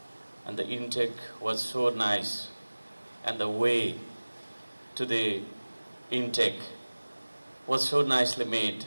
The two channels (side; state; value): both; inverted; correlation -1.00